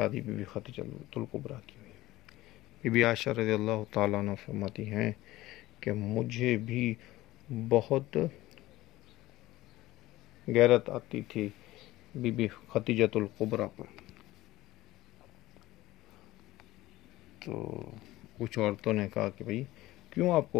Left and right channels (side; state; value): right; quieter; 17.3 dB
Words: بی بی خدیجۃ الکبریٰ کی ہوئی۔ بی بی عائشہ رضی اللہ تعالیٰ عنہ فرماتی ہیں کہ مجھے بھی بہت غیرت آتی تھی بی بی خدیجۃ الکبریٰ پر، تو کچھ عورتوں نے کہا کہ بھئی کیوں آپ